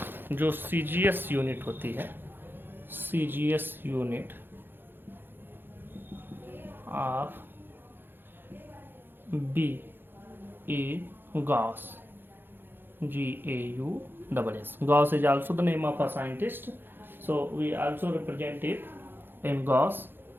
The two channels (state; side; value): late; left; 0.10 ms